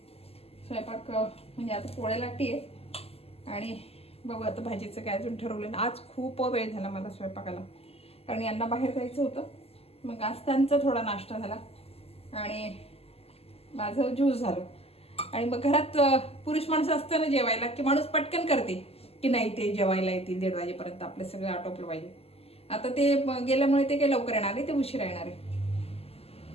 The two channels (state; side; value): late; right; 0.29 ms